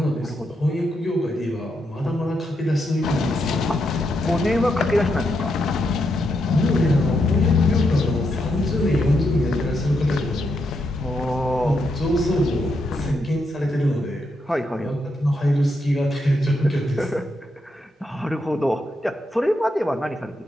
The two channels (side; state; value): both; normal; correlation 0.81